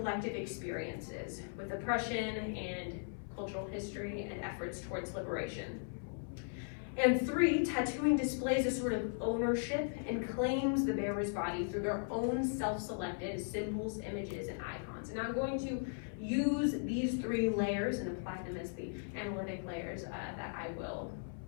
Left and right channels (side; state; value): right; silent; 53 dB below the other